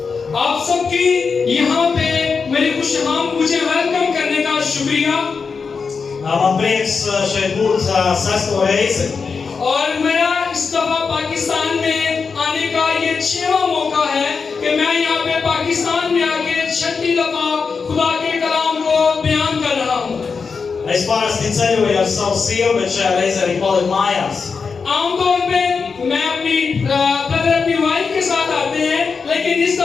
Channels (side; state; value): right; quieter; 5.2 dB